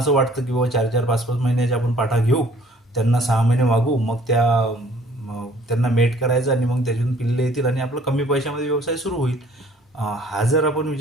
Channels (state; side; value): normal; both; correlation 0.57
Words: वाटतं की बाबा 4-4, 5-5 महिन्याच्या आपण पाठा घेऊ, त्यांना 6 महिने वागू, मग त्यांना मेट करायचं आणि मग त्याच्यातून पिल्ले येतील आणि आपलं कमी पैशामध्ये व्यवसाय सुरू होईल. हा जर आपण